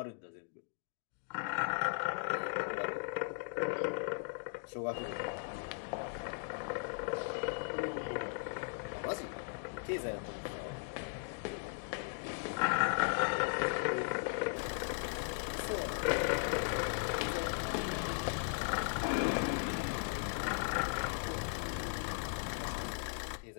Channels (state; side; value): silent; right; digital silence